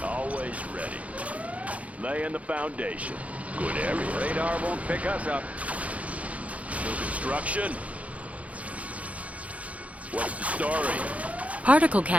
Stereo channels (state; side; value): late; left; 0.066 ms